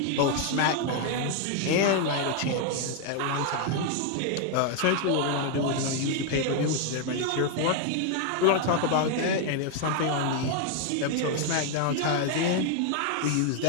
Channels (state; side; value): different; both; correlation 0.01